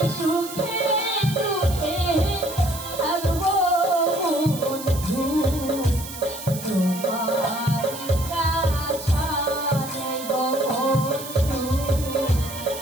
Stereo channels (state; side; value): noise; right; hiss, 11 dB below the sound